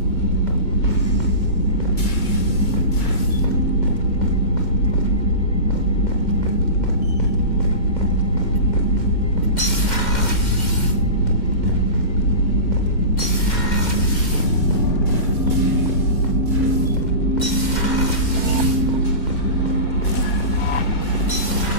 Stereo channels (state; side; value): late; right; 2.1 ms